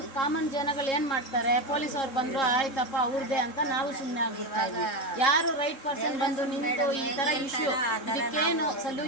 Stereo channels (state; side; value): late; right; 3.7 ms